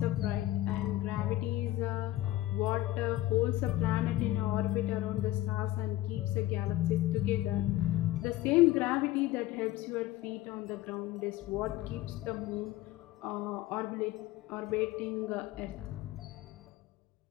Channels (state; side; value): quieter; right; 15.6 dB